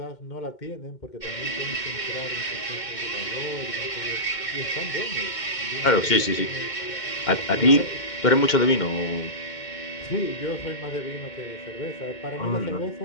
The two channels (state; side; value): late; right; 2.1 ms